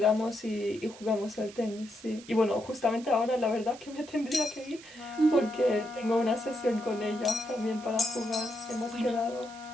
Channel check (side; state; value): right; noise; hiss, 19 dB below the sound